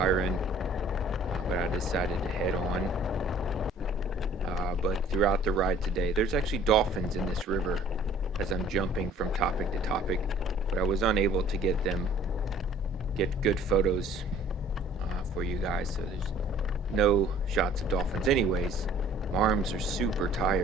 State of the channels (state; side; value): normal; both; correlation 0.54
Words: but I decided to head on. But throughout the ride today, there's actually dolphins in this river as I'm jumping from topic to topic, but I was unable to get good photos for you guys, so there's no shots of dolphins. Anyways, my arms are super